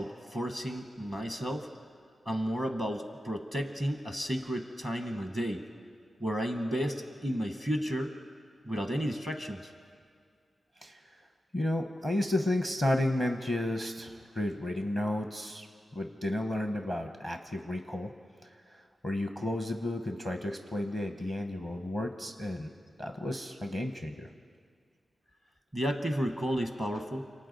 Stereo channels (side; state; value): both; normal; correlation 0.90